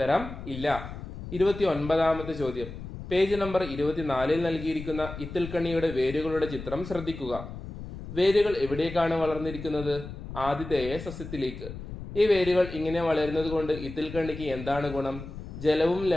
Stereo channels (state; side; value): noise; left; rumble, 10 dB below the sound